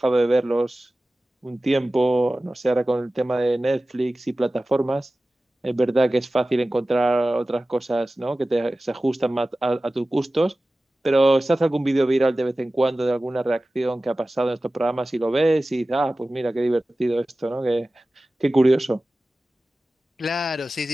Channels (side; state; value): both; normal; correlation 0.96